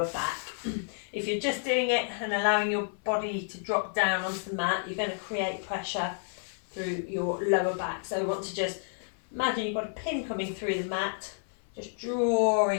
back. If you're just doing it and allowing your body to drop down onto the mat, you're going to create pressure through your lower back. So we want to just imagine you've got a pin coming through the mat, just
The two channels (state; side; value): silent; right; 58 dB below the other